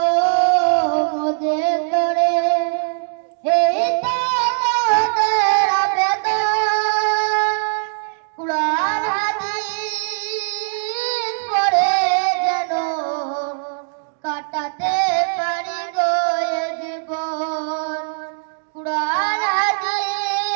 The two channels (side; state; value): left; silent; digital silence